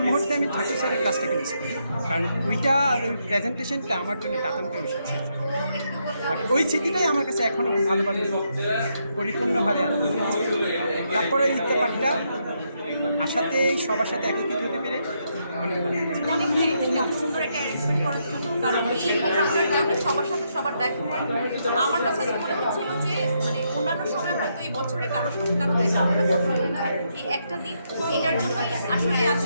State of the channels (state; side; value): inverted; both; correlation -0.78